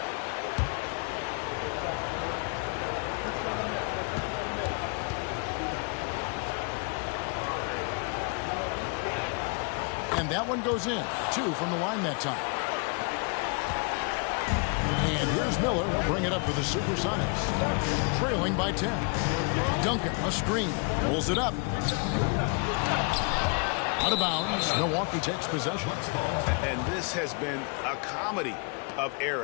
And that one goes in. 2 from the line that time. And here's Miller. He'll bring it up for the Supersonics. Trailing by 10. Duncan, a screen. Pulls it up. Out of bounds. Milwaukee takes possession. And this has been a comedy of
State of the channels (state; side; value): quieter; right; 35.2 dB